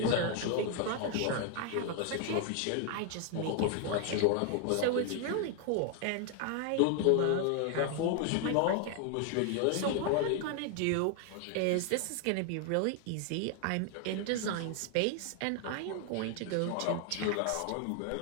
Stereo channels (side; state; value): both; different; correlation 0.00